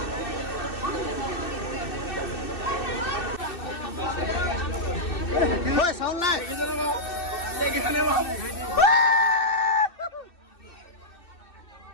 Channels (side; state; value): right; late; 2.6 ms